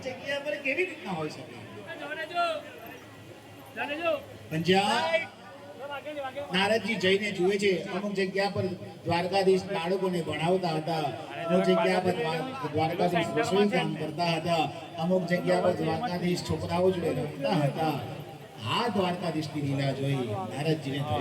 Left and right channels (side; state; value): both; identical; correlation 1.00